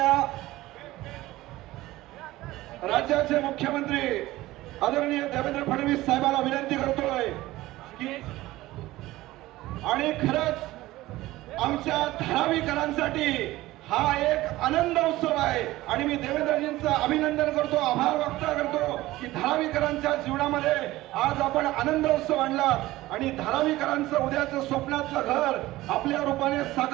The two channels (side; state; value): left; quieter; 17.4 dB